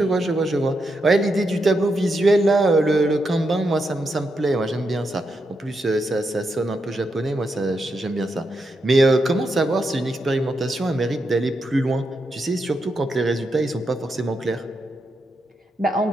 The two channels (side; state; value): both; normal; correlation 0.84